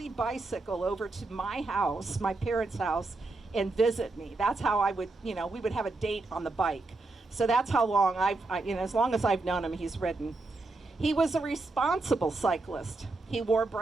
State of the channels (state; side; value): quieter; left; 3.3 dB